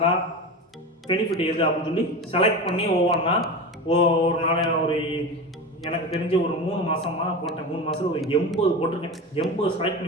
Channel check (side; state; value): both; normal; correlation 0.26